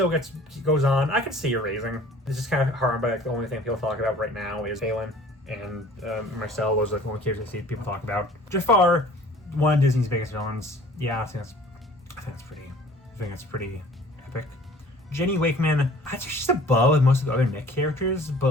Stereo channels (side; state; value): both; normal; correlation 0.50